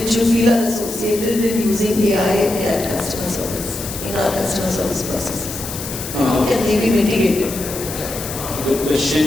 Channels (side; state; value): left; noise; hiss, 9 dB below the sound